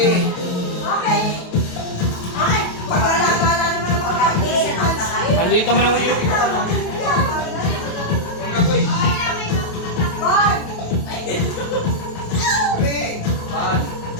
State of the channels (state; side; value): late; right; 28 ms